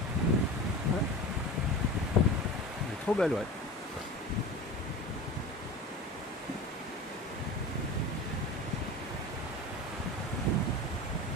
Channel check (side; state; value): both; normal; correlation 0.32